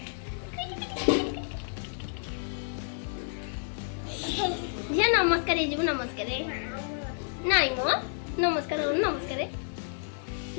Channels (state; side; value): silent; right; digital silence